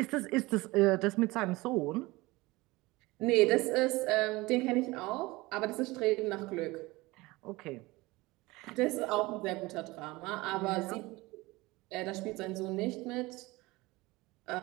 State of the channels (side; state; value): left; quieter; 21.5 dB